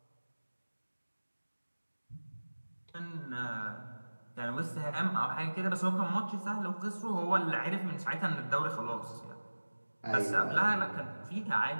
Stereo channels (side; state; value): both; inverted; correlation -1.00